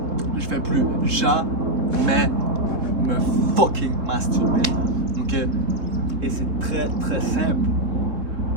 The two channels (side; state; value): left; late; 3.7 ms